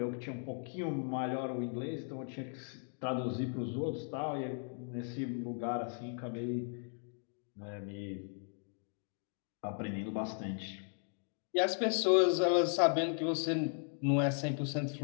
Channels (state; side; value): silent; right; 53 dB below the other